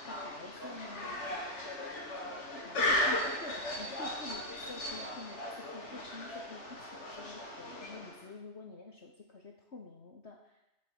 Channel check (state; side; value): late; right; 3.4 ms